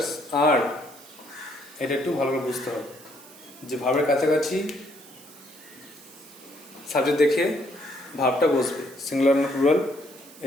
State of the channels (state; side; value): noise; right; hiss, 21 dB below the sound